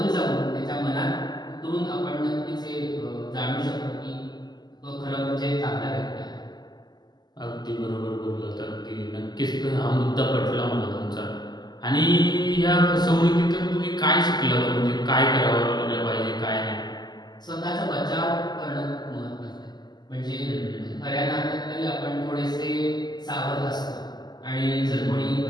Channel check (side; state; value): right; late; 0.21 ms